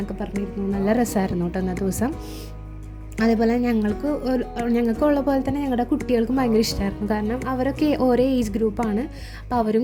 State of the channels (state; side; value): identical; both; correlation 1.00